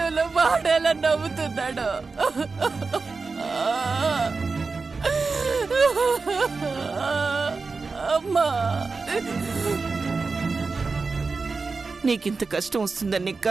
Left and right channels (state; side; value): quieter; left; 4.3 dB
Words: వాడేలా నవ్వుతున్నాడు. అమ్మా, నీకింత కష్టం వస్తుందని నీ